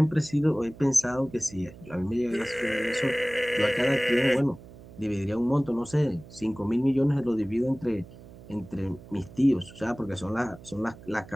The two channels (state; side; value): noise; right; hum, 19 dB below the sound